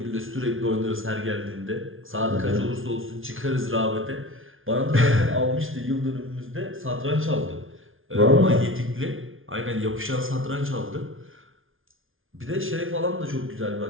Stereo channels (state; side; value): late; left; 0.58 ms